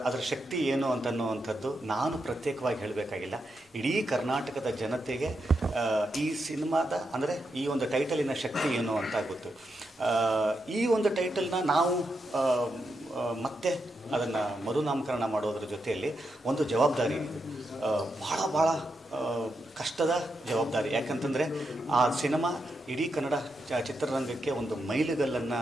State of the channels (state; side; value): normal; both; correlation 0.84